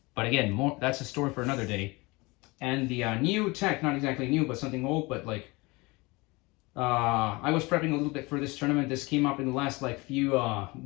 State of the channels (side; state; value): right; quieter; 24.4 dB